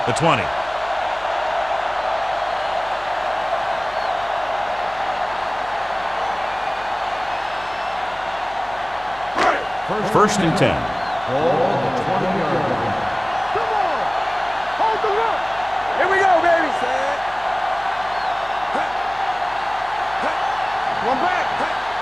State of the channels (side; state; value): left; noise; hum, 23 dB below the sound